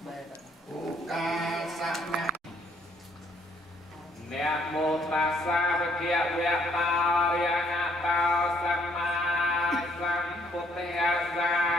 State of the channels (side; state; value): both; normal; correlation 0.67